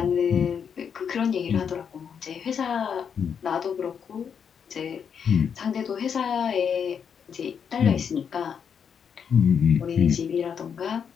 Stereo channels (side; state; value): right; quieter; 7.2 dB